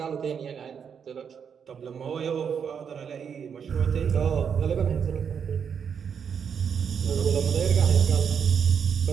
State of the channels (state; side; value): quieter; left; 7.2 dB